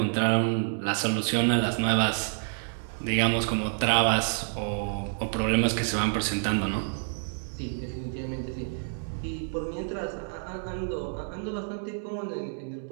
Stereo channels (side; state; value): left; silent; digital silence